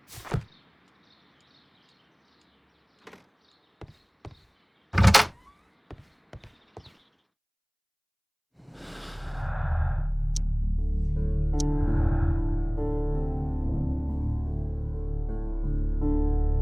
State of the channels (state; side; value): identical; both; correlation 1.00